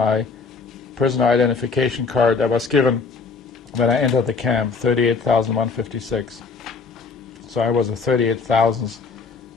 prisoner identification card that was given when I entered the camp, 38,156. So I was a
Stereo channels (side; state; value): right; quieter; 4.9 dB